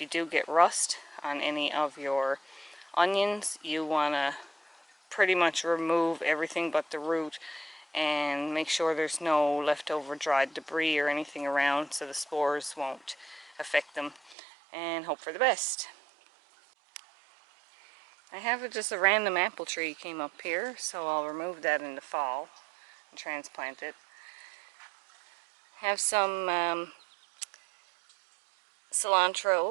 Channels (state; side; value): drops out; left; at 14.4 s